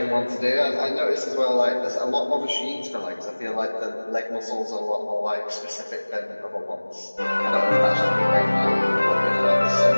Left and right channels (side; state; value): both; inverted; correlation -1.00